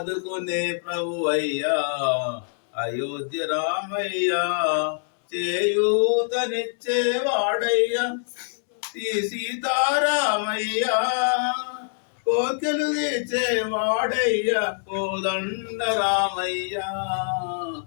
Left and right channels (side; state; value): right; silent; 62 dB below the other